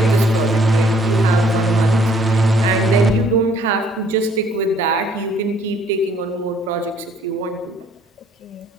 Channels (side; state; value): both; normal; correlation 0.62